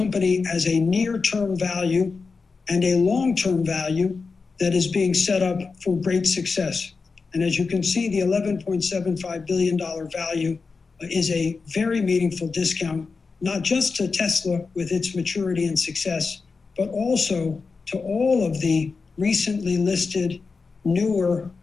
has a near-term value and a long-term value that is being set up for great success. And as you can see, the $11.75 billion value is a very meaningful discount, not just to Tesla with its maturity and success, but also to all of the recently listed newer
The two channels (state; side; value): quieter; right; 4.5 dB